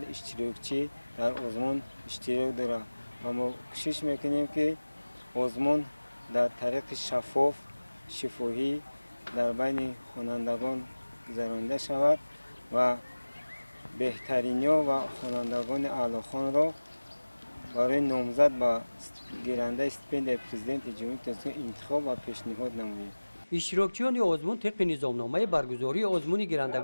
اشتراکچی در آزمون اشتراک دارند و ما کوشش میکنیم که آزمون در طریق شفاف شفاهی در بین خوانندگان گذرانده شود و بهترین‌ها و خوانندگان اعلیخوان را برای نامزد به گیرنده استیپندیای پرزیدنت جمهوری تاجیکستان انتخاب و پیشنهاد نماییم. اشتراکچیان آزمون طبق نظامنامه برگزاری آزمون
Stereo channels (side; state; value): both; inverted; correlation -1.00